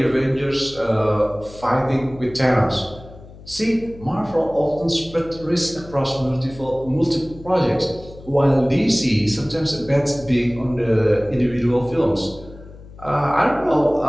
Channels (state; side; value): noise; left; hum, 19 dB below the sound